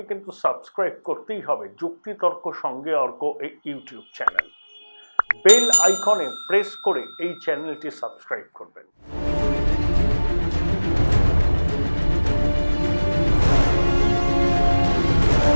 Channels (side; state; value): both; inverted; correlation -1.00